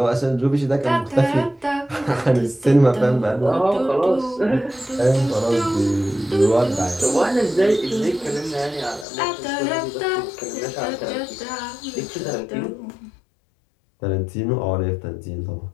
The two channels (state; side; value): drops out; right; at 9.1 s